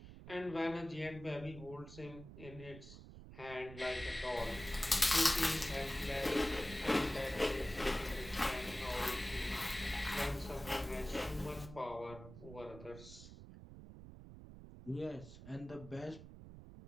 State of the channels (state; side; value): noise; right; rumble, 14 dB below the sound